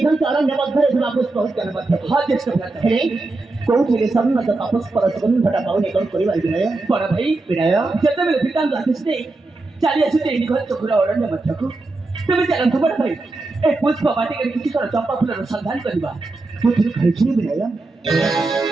ଅରଣ୍ୟ ମଧ୍ୟରେ ବାପସ ପହଞ୍ଚିବାର ମଧ୍ୟ हाँ ज्येष्ठ भ्राता ହେଲେ କୋଉଠିରେ ସମ୍ମତ ବାପସ ପର ସୁଗନ୍ଧଟା ପାଉନି କ'ଣ କରିବା ବିନୟ बड़ा भाई ବିନୟ ଯେତେବେଳେ ପିତାଙ୍କ ଆଦେଶ ଦେଇ ଚାଲି ଆସୁଛେ ନିଘଞ୍ଚ ଘୋର ଅରଣ୍ୟ ମଧ୍ୟକୁ ତେବେ ଚାଲନ୍ତୁ ବଡ଼ ଭାଇ ଏ ପୁଷ୍ପ ବାଟିକାରେ କିଛି ଥର ଚମ୍ପା ଫୁଲର ସନ୍ଧାନ କରିବା ମୁଁ ଥରେ କହିଛି ବିନୟ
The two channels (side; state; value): left; quieter; 3.2 dB